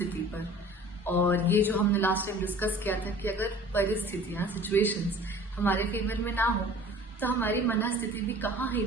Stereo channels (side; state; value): both; normal; correlation 0.46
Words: पर, और ये जो हमने लास्ट टाइम डिस्कस किया था कि अगर परिस्थितियाँ, सिचुएशंस हमारे फेवर में ना हो तो हमारी मन स्थिति भी कहाँ ही